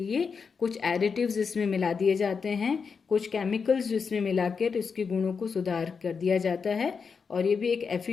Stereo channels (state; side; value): quieter; right; 5.6 dB